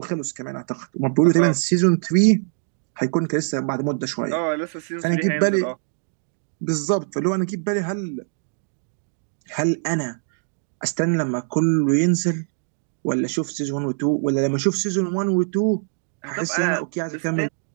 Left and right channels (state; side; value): silent; left; digital silence